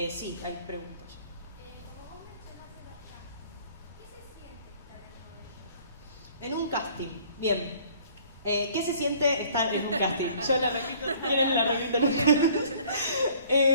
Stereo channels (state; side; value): inverted; both; correlation -0.54